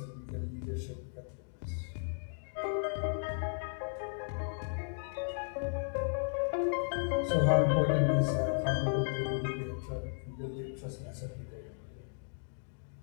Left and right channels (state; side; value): silent; right; digital silence